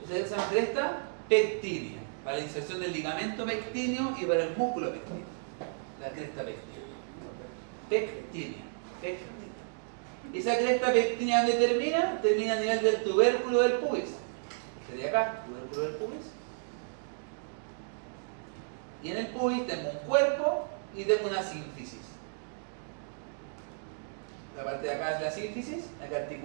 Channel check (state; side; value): silent; left; digital silence